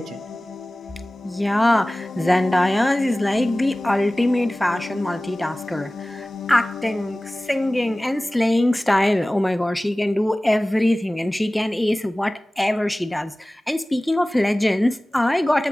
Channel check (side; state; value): both; normal; correlation 0.98